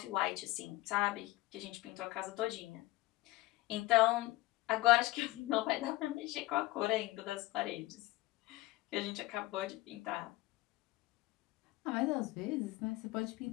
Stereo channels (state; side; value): quieter; right; 19.2 dB